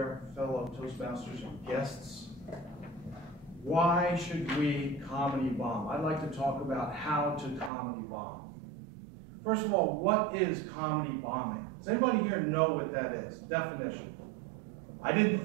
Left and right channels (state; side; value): drops out; left; at 7.7 s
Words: fellow Toastmasters and guests. Why should we comedy bomb? I'd like to talk about how to comedy bomb. First of all, what is comedy bombing? Does anybody here know what that is? Definition. I